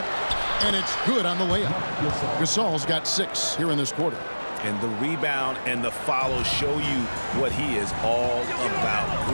and it's good on the layup. Gasol's got 6 here in this quarter. And the rebound and the follow show you what he is all about.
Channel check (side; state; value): both; inverted; correlation -1.00